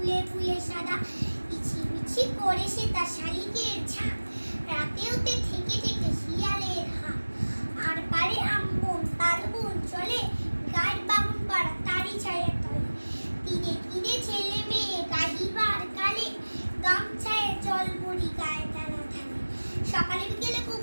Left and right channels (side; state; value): both; inverted; correlation -1.00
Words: ফুলে সাদা। ইছি করে সে তার শালিকের ঝাঁক, রাতেওতে থেকে থেকে শিয়ালের হাঁক। আর পারে আমবন তালবন চলে, গায়ের বামুন পাড়া তারি ছায়া তলে। তীরে তীরে ছেলে মেয়ে গাহিবার কালে, গামছায় জল ভরি গায়ে টানা ঢালে। সকালে বিকেলে